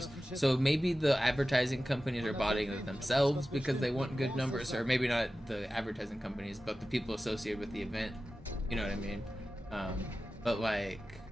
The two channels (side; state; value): both; normal; correlation 0.95